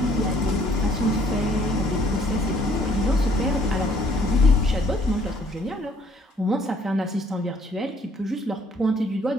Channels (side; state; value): both; normal; correlation 0.62